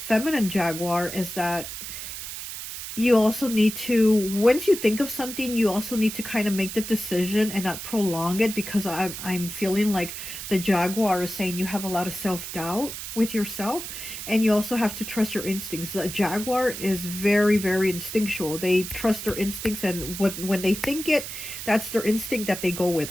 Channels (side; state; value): right; noise; hiss, 8 dB below the sound